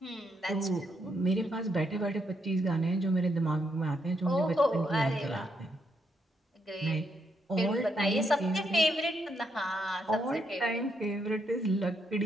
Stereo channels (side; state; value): both; normal; correlation 0.77